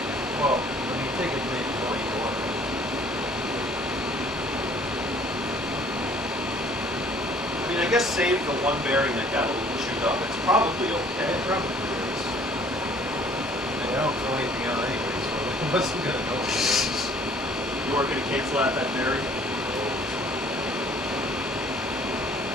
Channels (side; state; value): both; normal; correlation 0.56